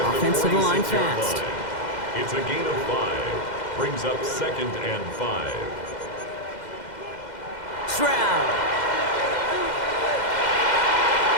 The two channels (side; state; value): right; late; 2.1 ms